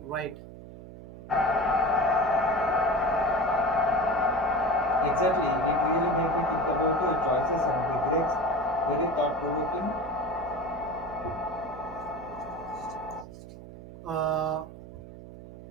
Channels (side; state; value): right; noise; hum, 15 dB below the sound